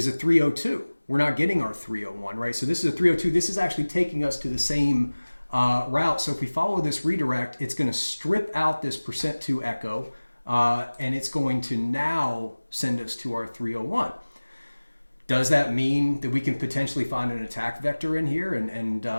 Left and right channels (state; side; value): inverted; both; correlation -1.00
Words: a 302. We're not getting our 301, right? So this is a 302. This is actually taking us to the same route. So if we follow this redirect, it's going to strip out this %2 echo, and it's going to now send us to our 301. Does that mean that we can potentially find an attack vector in here and